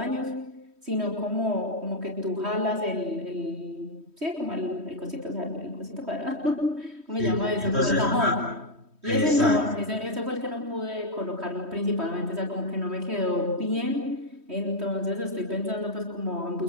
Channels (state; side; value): late; left; 3.1 ms